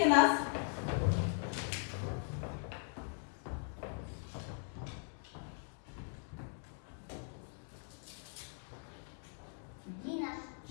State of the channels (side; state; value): right; silent; 51 dB below the other